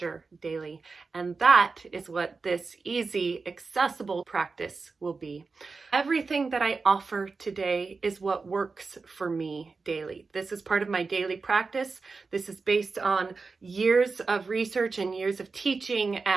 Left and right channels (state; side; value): quieter; left; 4.4 dB